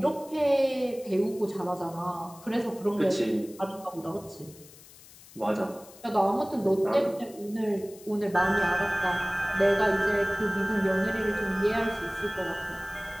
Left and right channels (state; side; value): noise; left; hiss, 21 dB below the sound